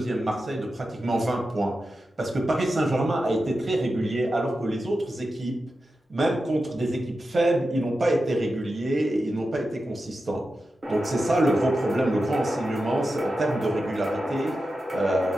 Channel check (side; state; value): both; normal; correlation 0.91